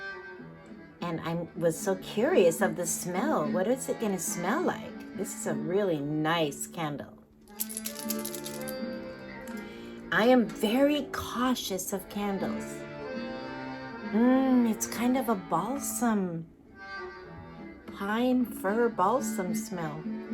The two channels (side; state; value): both; identical; correlation 1.00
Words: And I was so curious of the smell. What is it going to smell like? This is a really nice candle. I am very cautious of candles. It's kind of a balsam, pine fir balsam smell.